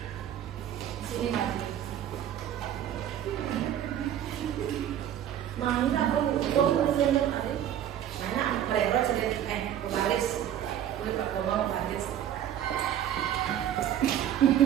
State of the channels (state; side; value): quieter; left; 10.7 dB